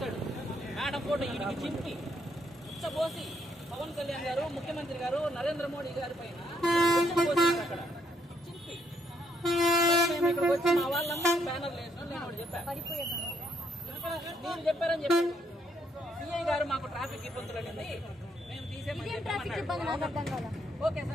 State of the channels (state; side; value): normal; both; correlation 0.72